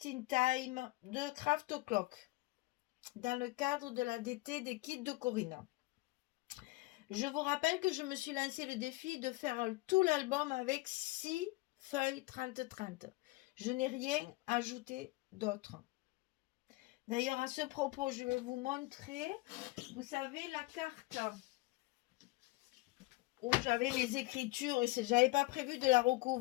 in Time de Craft O'Clock dans le cadre de la DT des kits de Corinna. Je vous rappelle que je me suis lancé le défi de faire tout l'album avec 6 feuilles 30-30. Je n'ai rien ajouté d'autre. D'ailleurs, à ce propos, je vais vous montrer, vous savez, la carte où j'avais les écritures, et j'avais pas prévu de la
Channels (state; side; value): quieter; right; 21.7 dB